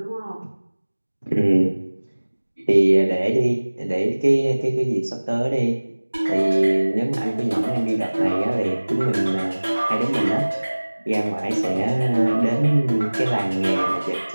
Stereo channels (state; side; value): inverted; both; correlation -1.00